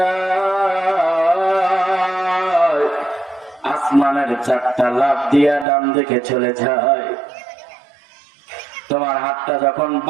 আসমানের চারটা লাফ দিয়া ডান দিকে চলে যায়। তোমার হাতটা যখন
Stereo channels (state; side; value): drops out; left; at 5.7 s